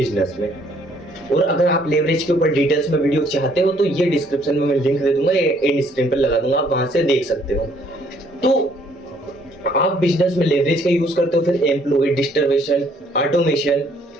में। और अगर आप लेवरेज के ऊपर डिटेल्स में वीडियो चाहते हो तो ये डिस्क्रिप्शन में मैं लिंक दे दूंगा, एंड स्क्रीन पर लगा दूंगा, आप वहां से देख सकते हो। तो आप बिजनेस में लेवरेज का यूज करते हो, फिर एम्प्लॉय, डिस्ट्रीब्यूशन, ऑटोमेशन,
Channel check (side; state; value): both; normal; correlation 0.64